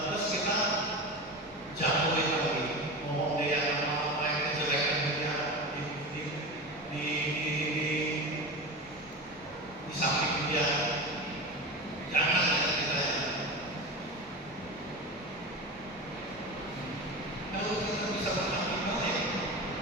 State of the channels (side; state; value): both; normal; correlation 0.26